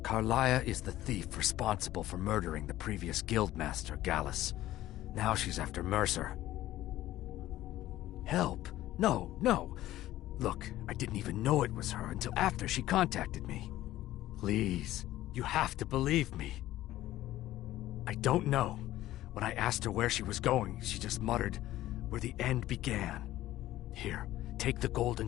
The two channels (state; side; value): quieter; right; 14.8 dB